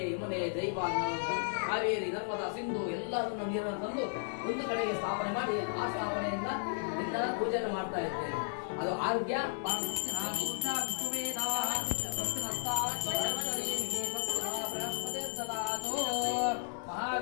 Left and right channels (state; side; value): silent; right; 55 dB below the other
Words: ಯಮುನೆ ಜೈವ ಕಾವೇರಿ ನರ್ಮದಾ ಸಿಂಧು ಎಲ್ಲರನ್ನ ನೀರನ್ನು ತಂದು ಒಂದು ಕಡೆಗೆ ಸ್ಥಾಪನೆ ಮಾಡಿ ಆ ಸ್ಥಾಪನೆಯಿಂದ ನಿನ್ನ ಪೂಜೆಯನ್ನು ಮಾಡ್ತಾ ಇದ್ದೇನೆ. ಅದು ಆರೋಗ್ಯ